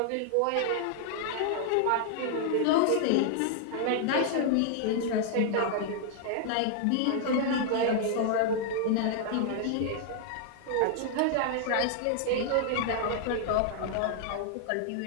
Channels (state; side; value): different; both; correlation -0.01